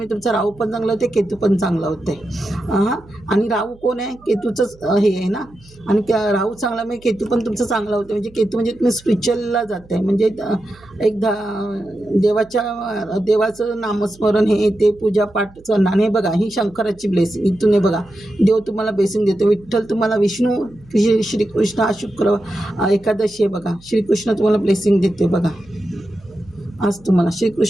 तुमचा राहू पण चांगलं होते, केतू पण चांगलं होते. हां, आणि राहू कोण आहे? केतूचंच हे आहे ना. आणि राहू चांगल्यामुळे केतू पण तुमचं चांगलं होतं. म्हणजे केतू म्हणजे तुम्ही स्पिरिच्युअलला जात आहे. म्हणजे एकदा देवाचं नामस्मरण हे ते पूजापाठ करणार. आणि हे बघा ही शंकराची ब्लेसिंग इथून हे बघा देव तुम्हाला ब्लेसिंग देतो. विठ्ठल तुम्हाला, विष्णू, श्रीकृष्ण आज शुक्र एकादशी आहे बघा. श्रीकृष्ण तुम्हाला ब्लेसिंग देते बघा. आज तुम्हाला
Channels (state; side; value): noise; right; hum, 25 dB below the sound